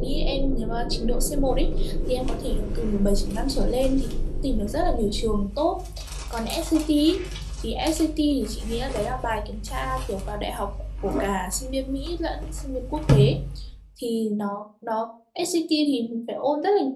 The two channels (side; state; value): both; identical; correlation 1.00